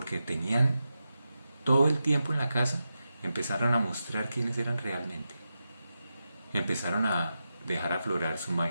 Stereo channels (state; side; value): inverted; both; correlation -0.90